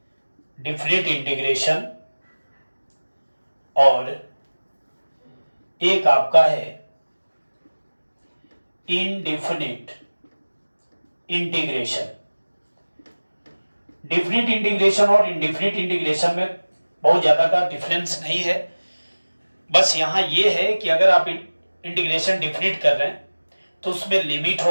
और एक आपका है इनडिफिनिट इंटीग्रेशन। डिफिनिट इंटीग्रेशन और इनडिफिनिट इंटीग्रेशन में बहुत ज्यादा का डिफरेंस नहीं है। बस यहां यह है कि अगर आप इंटीग्रेशन डिफिनिट कर रहे हैं तो उसमें लिमिट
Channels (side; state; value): both; inverted; correlation -1.00